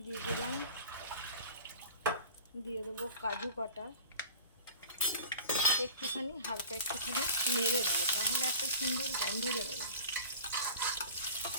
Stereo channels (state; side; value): inverted; both; correlation -0.39